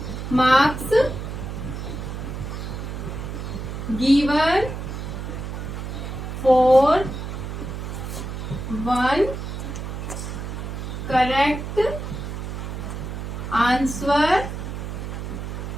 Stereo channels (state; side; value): noise; right; hum, 6 dB below the sound